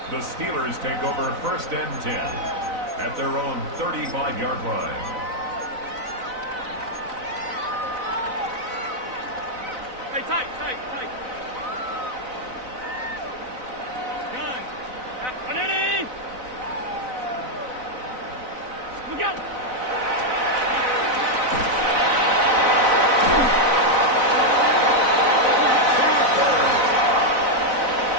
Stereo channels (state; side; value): late; left; 4.0 ms